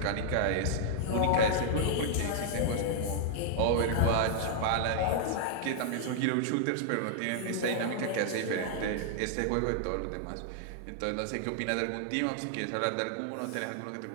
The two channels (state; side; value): different; both; correlation -0.01